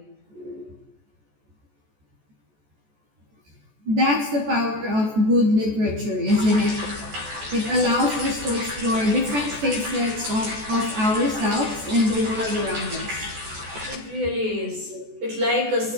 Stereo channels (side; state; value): left; late; 14 ms